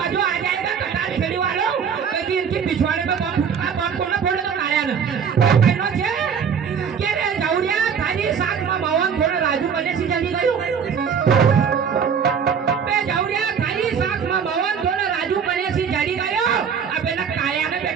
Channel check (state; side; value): quieter; left; 6.9 dB